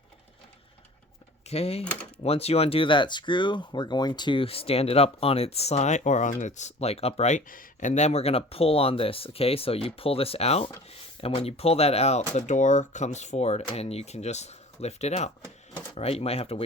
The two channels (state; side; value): normal; both; correlation 0.44